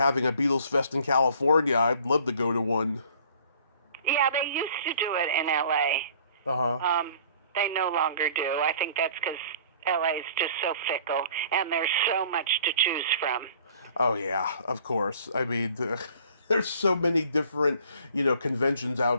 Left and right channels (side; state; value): both; inverted; correlation -0.53